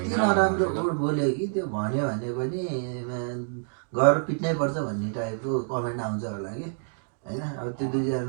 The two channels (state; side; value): silent; left; digital silence